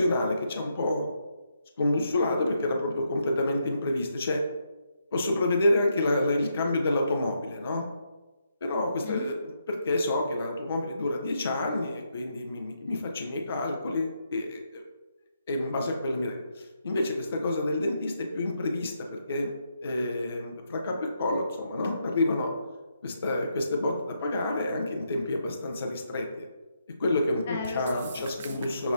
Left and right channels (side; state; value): both; inverted; correlation -0.78